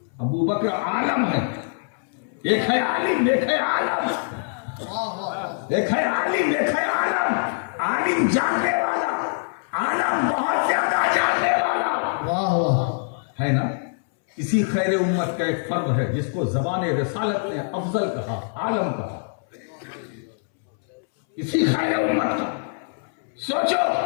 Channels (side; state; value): right; silent; 63 dB below the other